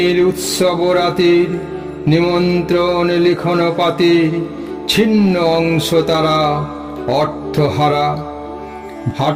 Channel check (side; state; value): both; identical; correlation 1.00